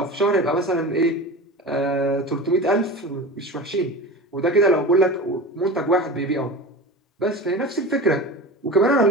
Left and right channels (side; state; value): both; normal; correlation 0.31